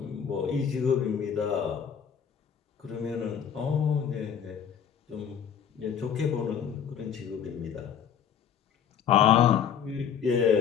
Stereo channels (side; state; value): right; quieter; 8.0 dB